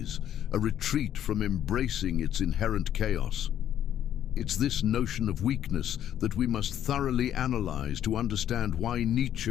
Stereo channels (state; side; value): quieter; right; 10.7 dB